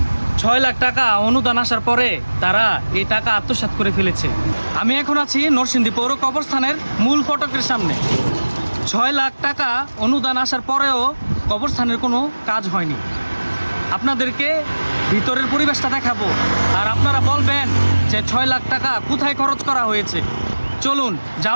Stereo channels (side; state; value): both; inverted; correlation -1.00